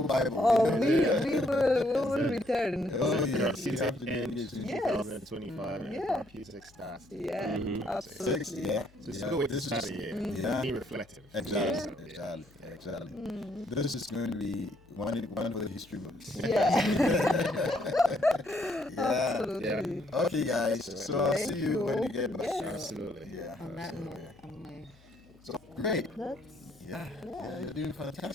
Bible. We will return. Oh, yeah. In 2025, music starts. Absolutely. So it's a good way to start the year. Be reflective. Exactly. This is going to be one for the history books. Absolutely. Okay, guys. So I'll see you when you get back. Absolutely. On that note, So great. You're doing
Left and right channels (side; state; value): left; noise; hum, 28 dB below the sound